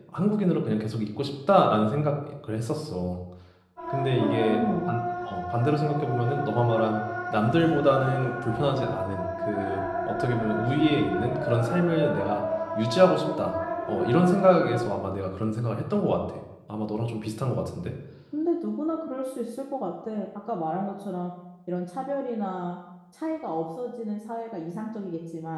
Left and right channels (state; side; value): identical; both; correlation 1.00